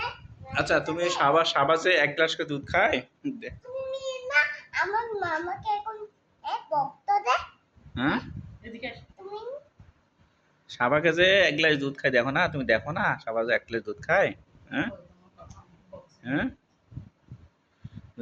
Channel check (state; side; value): identical; both; correlation 1.00